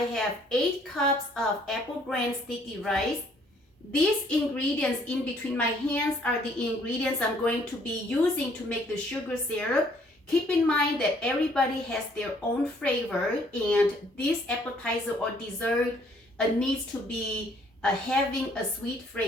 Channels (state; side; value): normal; both; correlation 0.63